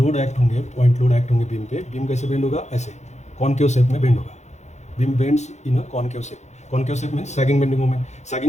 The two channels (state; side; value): late; right; 0.33 ms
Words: एक्ट होंगे, पॉइंट लोड एक्ट होंगे बीम पे. बीम कैसे बेंड होगा, ऐसे कॉनकेव शेप में बेंड होगा. Beam bends in a concave shape. Concave shape में सैगिंग बेंडिंग